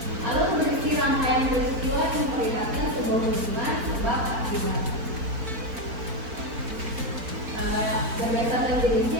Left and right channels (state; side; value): late; left; 4.4 ms